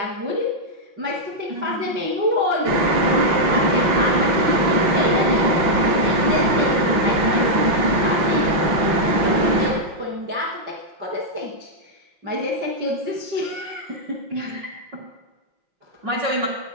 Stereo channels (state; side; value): late; left; 5.6 ms